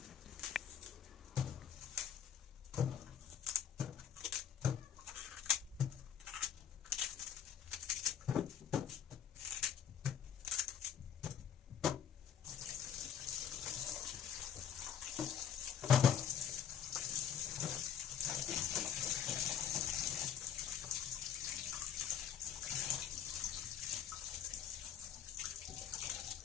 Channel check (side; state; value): right; quieter; 8.4 dB